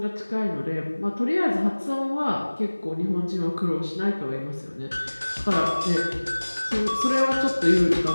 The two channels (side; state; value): both; inverted; correlation -1.00